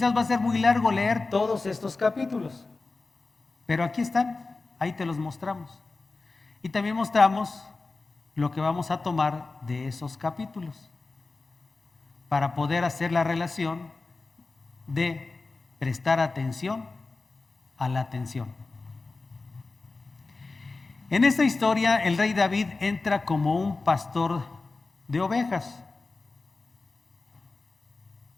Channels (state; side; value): quieter; right; 3.6 dB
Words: va a ser muy largo leer todos estos capítulos, pero aquí están, ahí te los mostramos. Y también mostramos lo que vamos a tomar de esos capítulos para poder hacer la relación de prestar atención a la atención. En esta historia, el rey David entra como un pastor de ovejas.